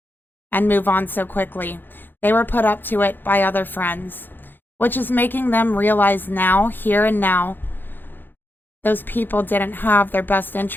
and move on so quickly. They were put up to it by other friends, which is making them realize now, here and now, those people didn't have their best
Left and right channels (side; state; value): right; late; 0.093 ms